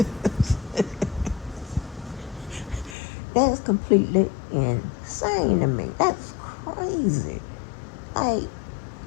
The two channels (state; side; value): drops out; right; at 3.0 s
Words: That's completely insane to me. That's crazy. Like,